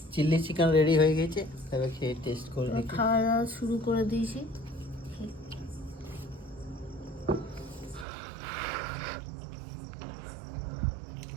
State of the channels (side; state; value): left; drops out; at 8.1 s